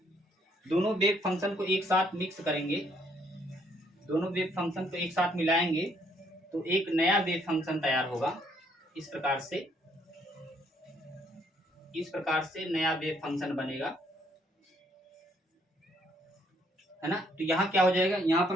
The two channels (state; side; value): normal; both; correlation 0.68